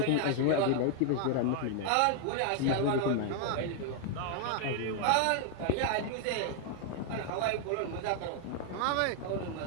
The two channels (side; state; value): both; different; correlation 0.00